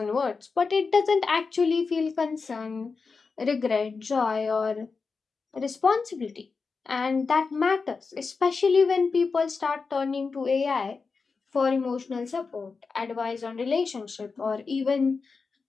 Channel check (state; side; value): quieter; right; 4.7 dB